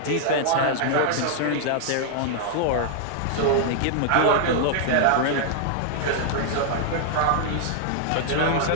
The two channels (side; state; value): both; different; correlation -0.01